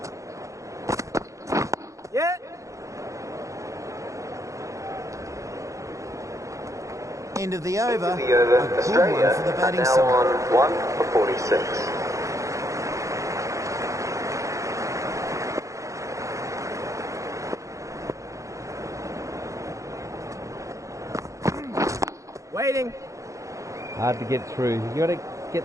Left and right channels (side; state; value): left; late; 0.15 ms